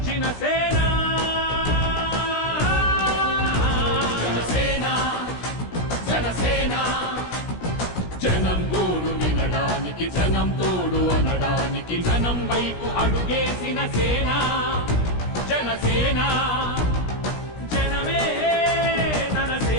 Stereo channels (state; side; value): late; right; 17 ms